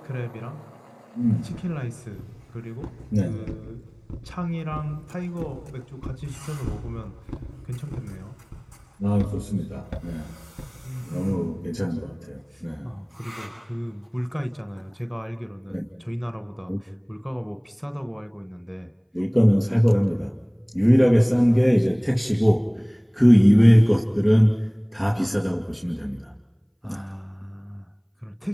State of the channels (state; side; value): identical; both; correlation 1.00